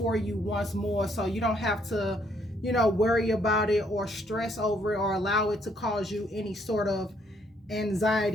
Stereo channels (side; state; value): both; normal; correlation 0.69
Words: you once more, so you don't have to worry about it or stress over it or allow it to cause you any sort of